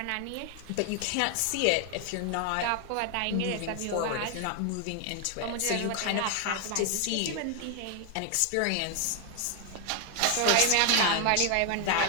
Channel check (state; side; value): different; both; correlation 0.00